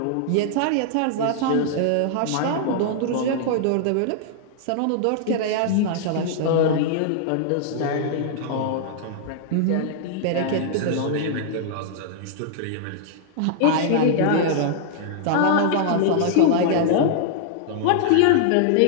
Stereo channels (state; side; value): different; both; correlation -0.01